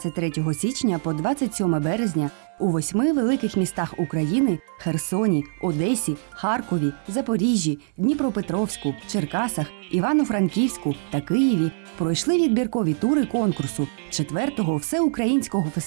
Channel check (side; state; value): left; silent; 63 dB below the other